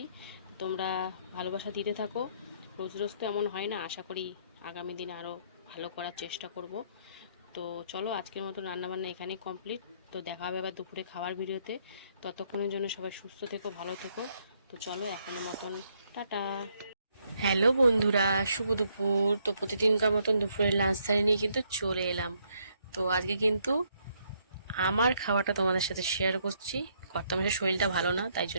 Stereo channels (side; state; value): both; inverted; correlation -0.71